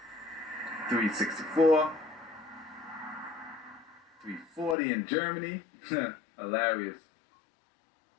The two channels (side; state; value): right; drops out; at 4.8 s